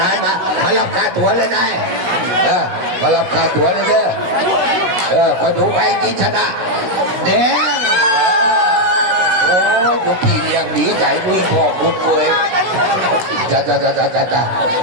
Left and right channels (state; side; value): late; left; 16 ms